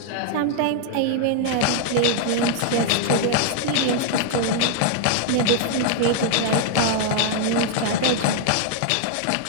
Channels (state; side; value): different; both; correlation 0.00